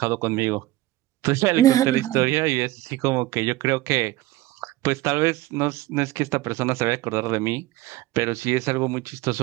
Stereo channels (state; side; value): quieter; left; 17.1 dB